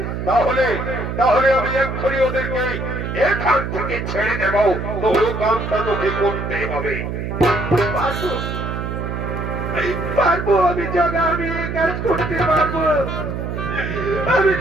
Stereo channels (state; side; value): noise; right; hum, 4 dB below the sound